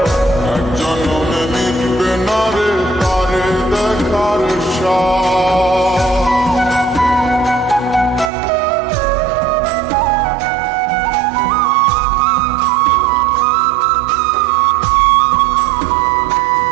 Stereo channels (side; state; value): left; drops out; at 8.3 s